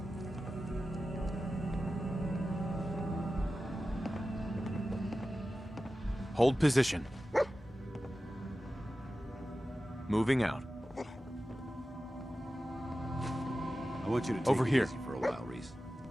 Hold position. Moving out. I want you to take Over it here. easy for a while, Reese.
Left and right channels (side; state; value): both; normal; correlation 0.94